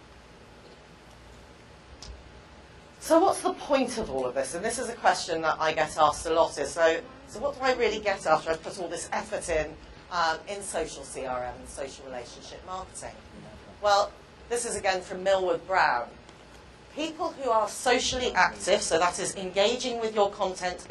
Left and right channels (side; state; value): both; identical; correlation 1.00